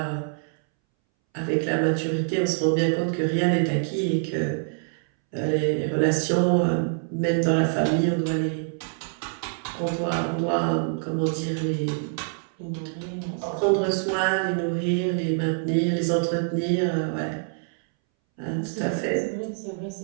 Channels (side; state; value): left; silent; 61 dB below the other